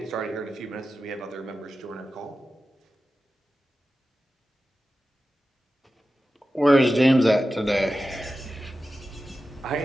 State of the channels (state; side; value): normal; both; correlation 0.93